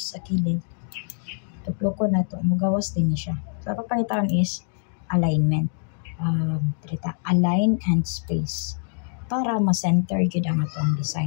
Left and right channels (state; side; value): silent; right; 58 dB below the other